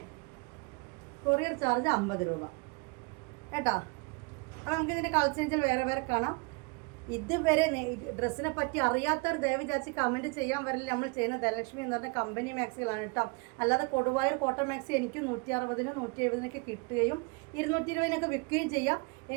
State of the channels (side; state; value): left; quieter; 29.9 dB